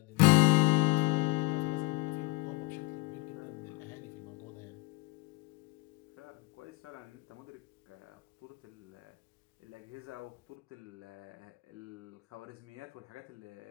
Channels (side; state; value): right; quieter; 25.1 dB